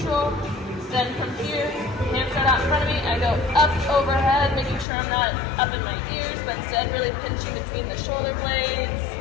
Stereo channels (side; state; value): right; drops out; at 4.9 s